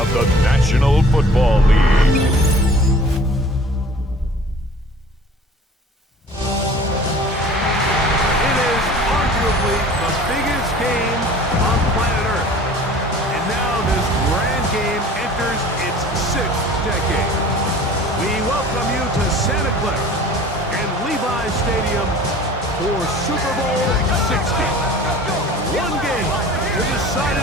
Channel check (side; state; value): both; normal; correlation 0.46